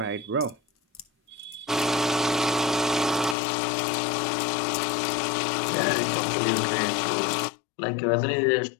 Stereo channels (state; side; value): drops out; right; at 3.4 s